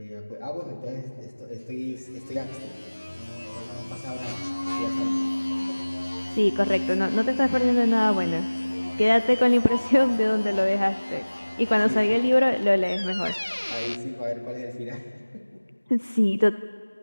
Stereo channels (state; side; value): inverted; both; correlation -1.00